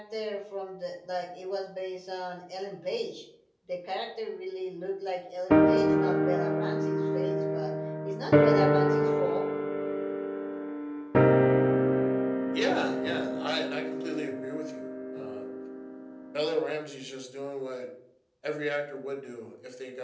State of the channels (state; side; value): identical; both; correlation 1.00